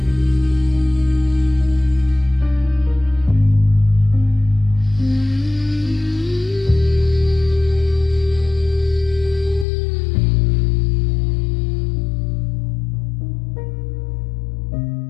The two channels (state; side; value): drops out; right; at 9.7 s